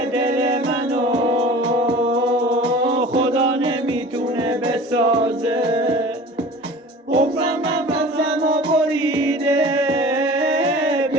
دل منو خدا نمیتونه بسازه. حفرم نفسم و بریده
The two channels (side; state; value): both; normal; correlation 0.41